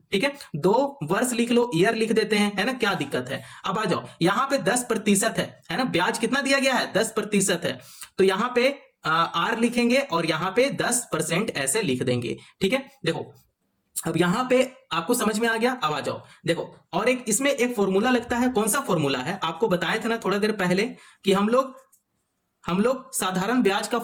ठीक है, 2 वर्ष लिख लो, ईयर लिख देते हैं, है ना, क्या दिक्कत है। अब आ जाओ यहां पे 10% है ना, ब्याज कितना दिया गया है, 10% है, तो यहां पे आर लिखेंगे और यहां पे 10% ऐसे लिख देंगे। ठीक है, देखो अब यहां पे आपको समझ में आ गया। अब आ जाओ देखो, और एक इसमें एक फॉर्मूला लगता है, कौन सा फॉर्मूला है, आपको बताए थे ना थोड़ा देर पहले कि हम लोग साधारण ब्याज का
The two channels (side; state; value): both; identical; correlation 1.00